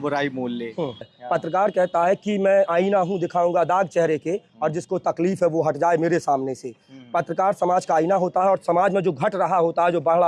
मोल ले। पत्रकार कहता है कि मैं आईना हूँ, दिखाऊंगा दाग चेहरे के, और जिसको तकलीफ है वो हट जाए मेरे सामने से। पत्रकार समाज का आईना होता है और समाज में जो घट रहा होता है, जो बढ़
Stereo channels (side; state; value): both; identical; correlation 1.00